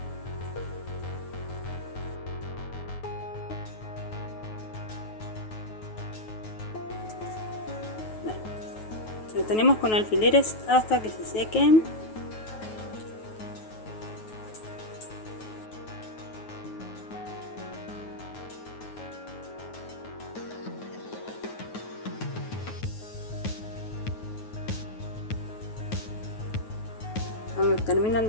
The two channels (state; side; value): late; right; 9.3 ms